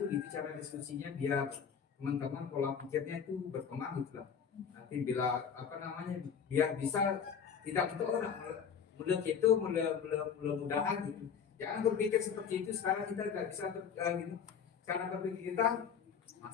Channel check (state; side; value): quieter; right; 7.1 dB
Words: gitu cara diskusinya, biar teman-teman pola pikirnya itu berkembang gitu lah. Nanti bila apa namanya, biar bisa tidak untuk orang mudah-mudahan gitu. Jangan berpikir seperti itu. Sekarang kita nggak bisa gitu. Cara berpikir kita,